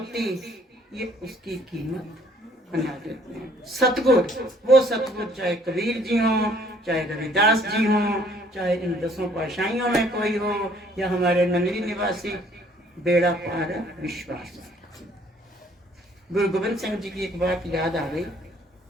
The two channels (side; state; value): both; normal; correlation 0.61